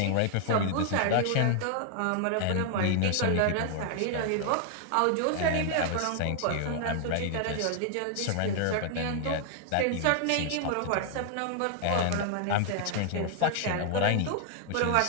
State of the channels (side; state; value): both; different; correlation 0.00